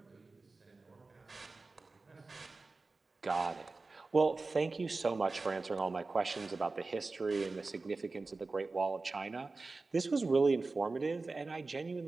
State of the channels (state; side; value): quieter; left; 3.6 dB